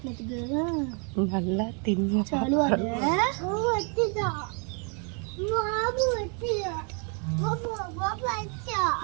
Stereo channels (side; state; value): left; quieter; 38.4 dB